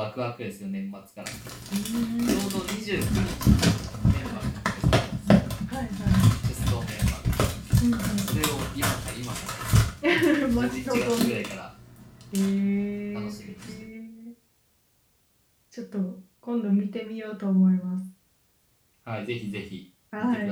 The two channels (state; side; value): identical; both; correlation 1.00